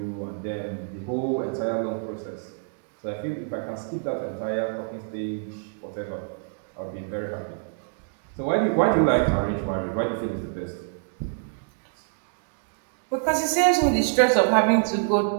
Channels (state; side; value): silent; left; digital silence